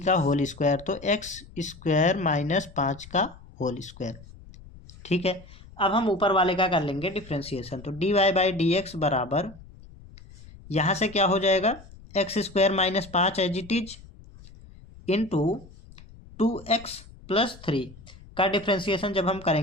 का होल स्क्वायर, तो एक्स स्क्वायर माइनस 5 का होल स्क्वायर। ठीक है, अब हम ऊपर वाले का कर लेंगे डिफ्रेंसिएशन, तो d y by d x बराबर यहाँ से क्या हो जाएगा x square minus 5 as it is into 2x plus 3 का डिफ्रेंसिएशन जब हम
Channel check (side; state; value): left; noise; rumble, 20 dB below the sound